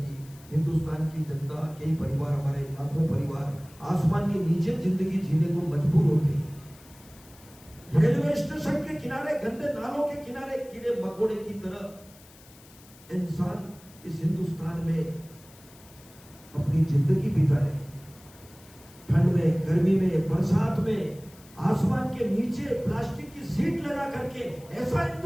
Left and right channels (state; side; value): noise; left; hiss, 24 dB below the sound